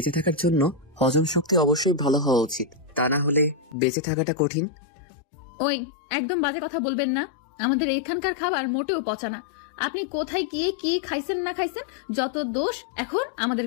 থাকার জন্য হজম শক্তি অবশ্যই ভালো হওয়া উচিত, তা না হলে বেঁচে থাকাটা কঠিন। ওই, একদম বাজে কথা বলবেন না। আমাদের এখানকার খাবার মোটেও পচা না। আপনি কোথায় গিয়ে কি খাইছেন না খাইছেন, যত দোষ এখন আমাদের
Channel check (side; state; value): right; drops out; at 3.8 s